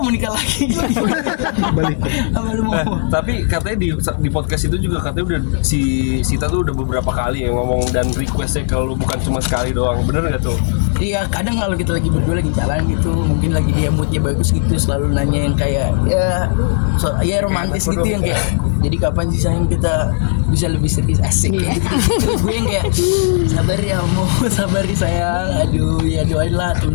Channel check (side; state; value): right; silent; digital silence